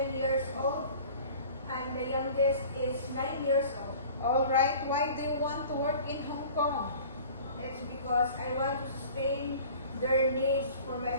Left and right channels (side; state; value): both; inverted; correlation -0.45